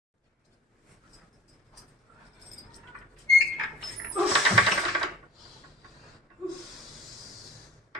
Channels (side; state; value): both; normal; correlation 0.46